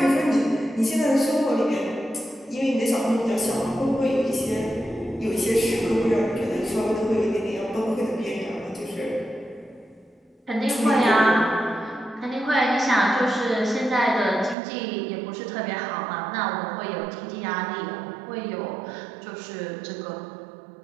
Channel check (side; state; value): left; drops out; at 14.6 s